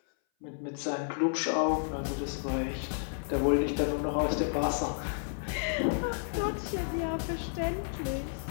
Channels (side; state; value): right; silent; 57 dB below the other